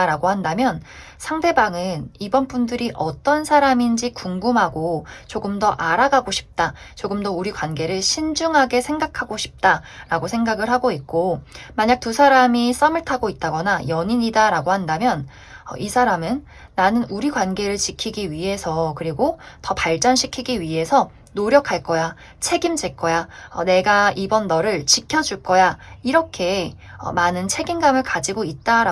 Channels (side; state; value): both; identical; correlation 1.00